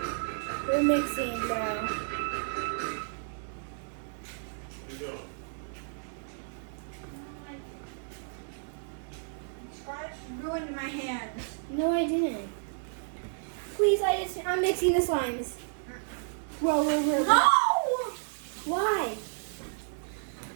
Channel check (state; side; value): silent; left; digital silence